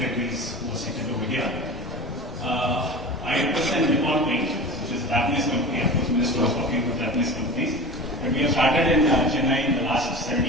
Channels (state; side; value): normal; both; correlation 0.33